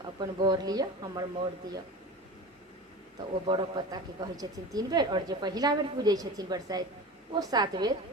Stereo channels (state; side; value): normal; both; correlation 0.32